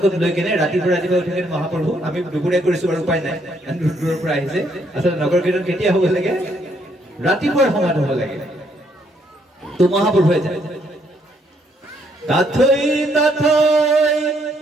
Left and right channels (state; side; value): normal; both; correlation 0.71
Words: লৈ কেনে ৰাতিপুৱা উঠি কেনে মহাপ্ৰভু আমি দুপৰীয়া কৰিছো আৰু উপায় নাই দূৰৰ পৰা আহিছে আচলতে নগৰ কীৰ্তন কেতিয়া হ'ব লাগে ৰাতিপুৱাৰ সময়ত হ'ব লাগে তো মহাপ্ৰভুৱে যায় তাথৈ